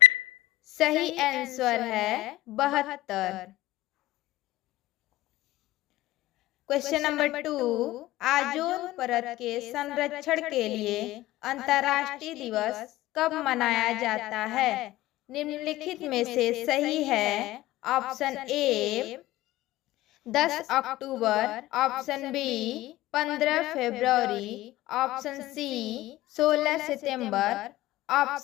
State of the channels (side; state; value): right; quieter; 16.4 dB